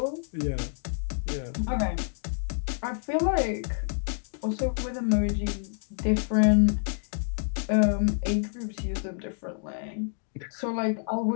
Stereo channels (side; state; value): right; silent; digital silence